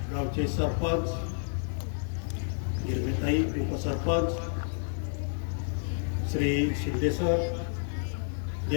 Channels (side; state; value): right; silent; digital silence